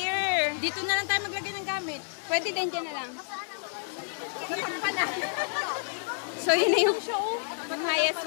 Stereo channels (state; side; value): silent; right; digital silence